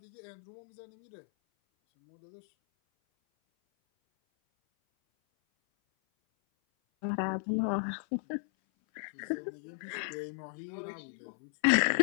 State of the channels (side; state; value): right; silent; 54 dB below the other